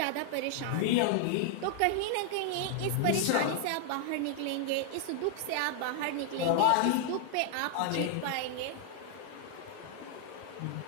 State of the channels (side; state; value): both; different; correlation 0.00